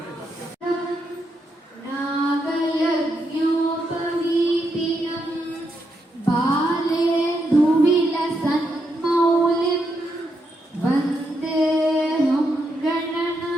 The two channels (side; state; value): both; normal; correlation 0.81